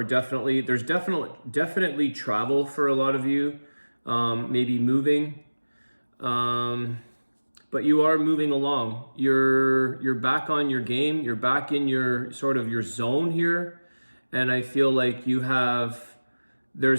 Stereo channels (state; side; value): inverted; both; correlation -1.00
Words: there's definitely travel for a lot of you, maybe moving. But you are moving along. You're back on your game. You're back in your sort of your zone here. And I feel like